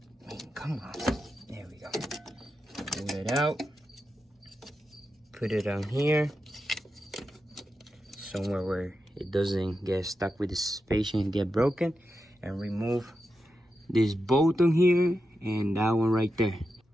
Come on. There we go. Pull it out. Put it on here. Somewhere where it doesn't get stuck with the suspension and get broken. And remove this bolt on here and that one right there.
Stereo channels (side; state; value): both; normal; correlation 0.89